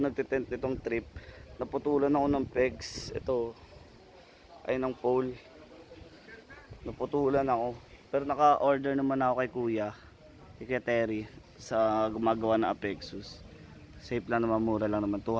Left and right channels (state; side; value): identical; both; correlation 1.00